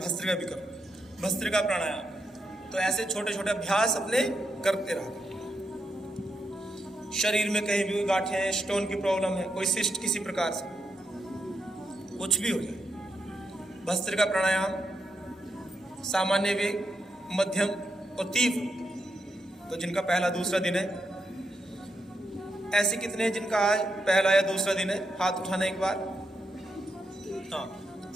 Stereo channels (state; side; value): normal; both; correlation 0.83